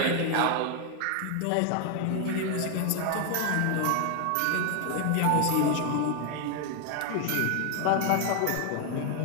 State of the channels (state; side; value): different; both; correlation 0.00